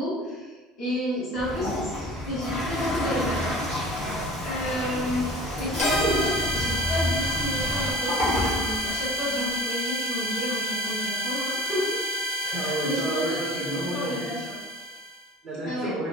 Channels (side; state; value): both; normal; correlation 0.43